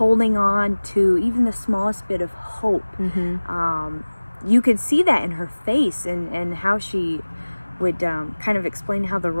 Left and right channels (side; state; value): both; inverted; correlation -1.00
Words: on to even the smallest bit of hope. You could see that in her face and how she would kind of explain how the